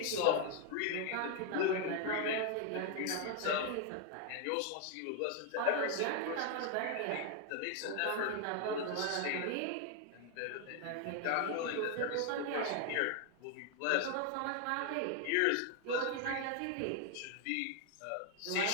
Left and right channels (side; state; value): both; different; correlation 0.00